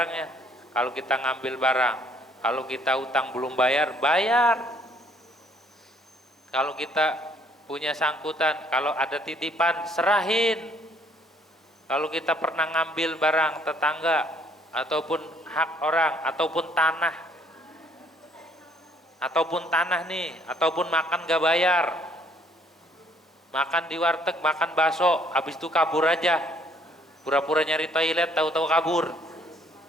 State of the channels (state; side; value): normal; both; correlation 0.64